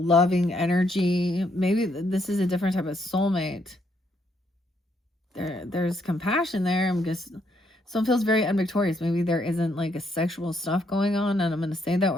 energy. Maybe this is a different type of soulmate. There's compassion there. I'm just... Someone feels very unvictorious. Maybe there isn't like a sexual stuff going on, and I'm going to say that,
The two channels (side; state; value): both; normal; correlation 0.73